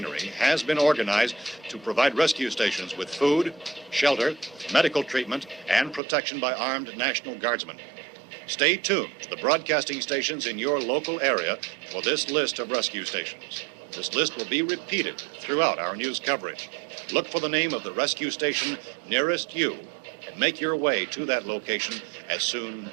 has been organized to provide rescue stations with food, shelter, medical treatment, and protection by armed National Guardsmen. Stay tuned to the broadcasting stations in your local area for this list of rescue stations. This list will be repeated throughout our news coverage. Look for the name of the rescue station nearest you and make your way to that location as soon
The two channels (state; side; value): drops out; left; at 6.0 s